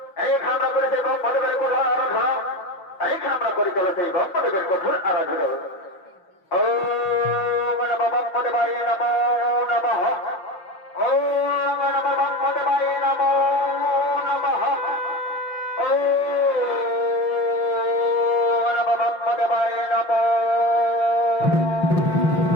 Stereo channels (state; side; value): late; right; 6.0 ms